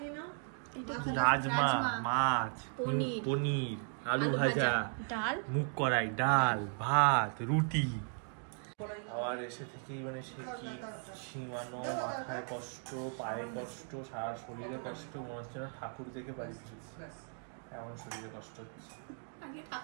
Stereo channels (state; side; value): silent; left; 53 dB below the other